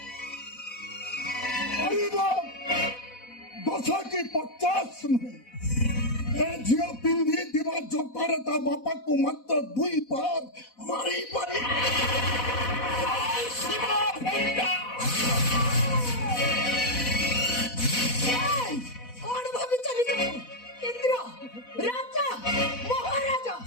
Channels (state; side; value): late; right; 4.1 ms